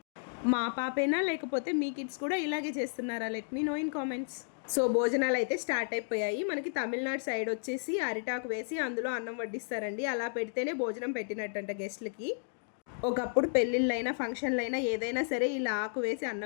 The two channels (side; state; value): right; silent; digital silence